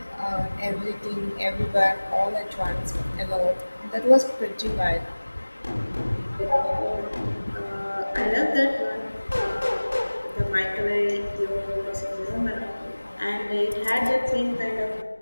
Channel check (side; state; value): both; inverted; correlation -1.00